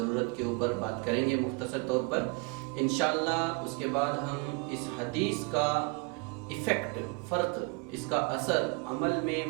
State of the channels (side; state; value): left; quieter; 31.1 dB